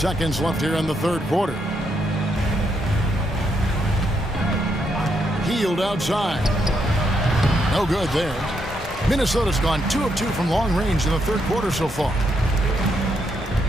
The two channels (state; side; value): normal; both; correlation 0.78